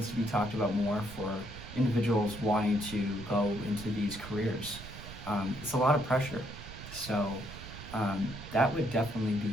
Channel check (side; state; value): right; noise; rumble, 13 dB below the sound